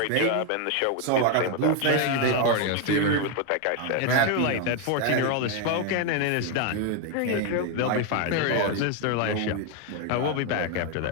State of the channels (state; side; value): different; both; correlation 0.01